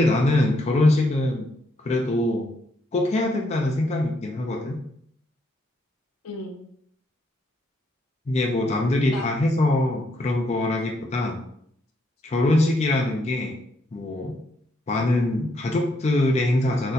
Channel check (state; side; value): normal; both; correlation 0.75